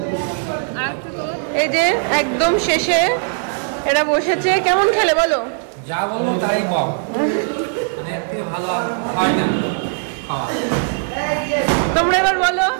এই যে একদম শেষে এরা বসেছে, কেমন খেলে বলো? যা বলবো তাই বল, মানে এর থেকে ভালো আর হয় না খাওয়া। তোমরা এবার বলো।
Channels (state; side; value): silent; left; digital silence